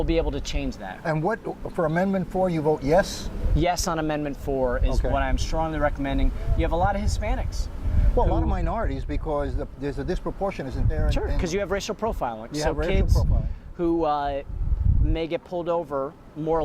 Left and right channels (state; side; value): identical; both; correlation 1.00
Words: be able to change that. And for Amendment 4, you vote yes? Yes on Amendment 4 is what I'm strongly recommending. You have a lot of Hispanics. Well, a lot of minorities, because there's a disproportion, isn't there? Sure, because you have racial profiling. You so have racial kids profiling. Who may get pulled over more